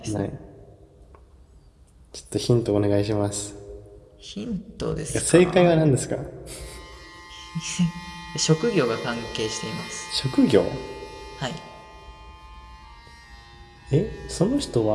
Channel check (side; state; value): both; identical; correlation 1.00